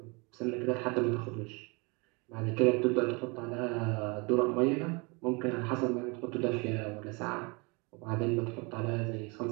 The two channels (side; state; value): left; quieter; 29.1 dB